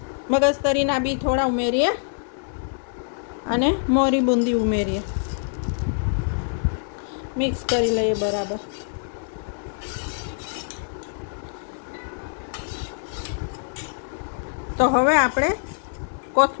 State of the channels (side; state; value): right; silent; 62 dB below the other